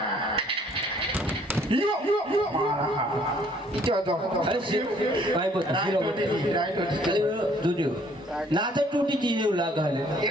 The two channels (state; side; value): normal; both; correlation 0.61